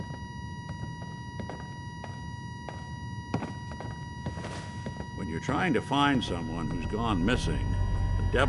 When you're trying to find someone who's gone missing, the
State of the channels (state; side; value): identical; both; correlation 1.00